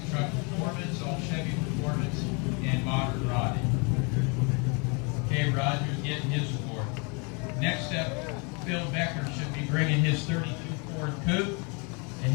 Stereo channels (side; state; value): right; quieter; 32.7 dB